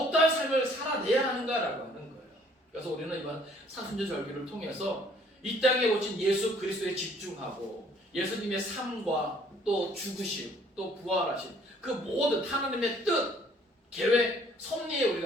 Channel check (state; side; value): normal; both; correlation 0.60